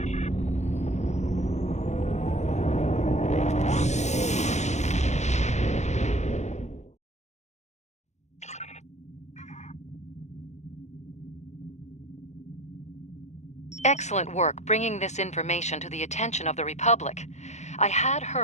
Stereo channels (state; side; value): late; right; 0.33 ms